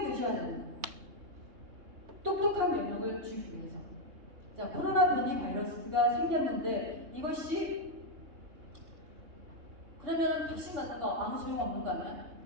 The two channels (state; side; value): late; left; 3.3 ms